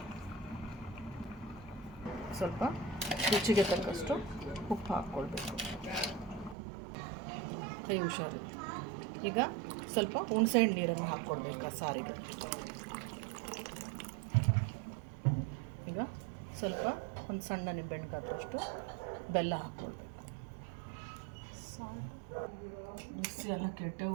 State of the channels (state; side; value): drops out; left; at 6.6 s